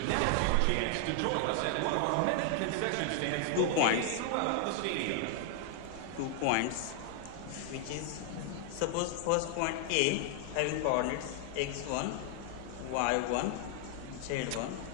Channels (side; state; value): both; different; correlation 0.00